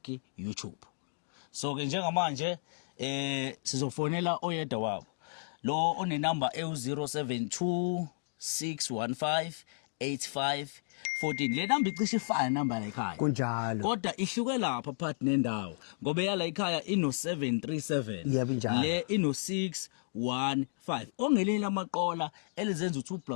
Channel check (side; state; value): right; silent; digital silence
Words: YouTube. So ke njengamanje sizofonela oyedwa wabo lo one number e072 615 8514 le number icishe ifana number la ekhaya kunjalo kodwa ihluke lapha phakathi nendawo ngoba yala ekhaya ino 737 yebo njalo le ino 615 ongeleni amaqola elizenza